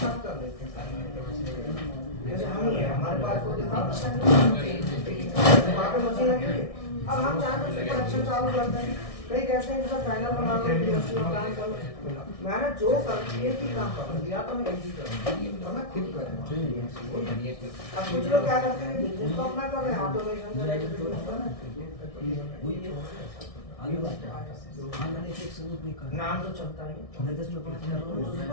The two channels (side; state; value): right; late; 1.6 ms